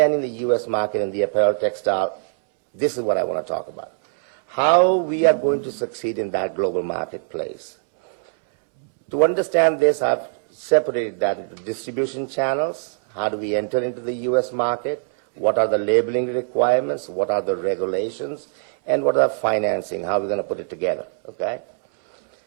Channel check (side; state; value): left; silent; 64 dB below the other